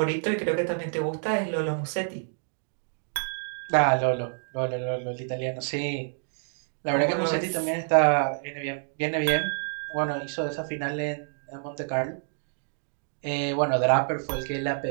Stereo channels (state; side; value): silent; left; 59 dB below the other